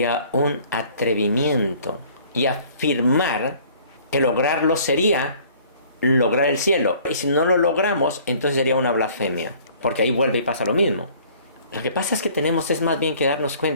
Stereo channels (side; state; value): both; inverted; correlation -0.54